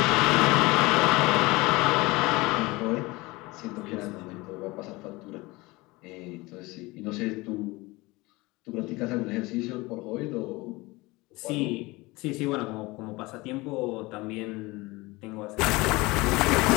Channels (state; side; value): quieter; right; 22.4 dB